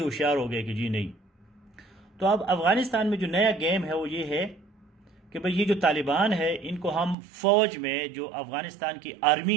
ہوشیار ہو گئے کہ جی نہیں. تو اب افغانستان میں جو نیا گیم ہے وہ یہ ہے کہ بھئی یہ جو طالبان ہے ان کو ہم فوج میں، جو افغانستان کی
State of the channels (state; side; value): drops out; left; at 7.2 s